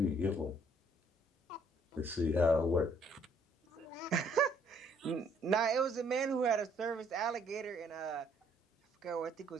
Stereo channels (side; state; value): both; normal; correlation 0.64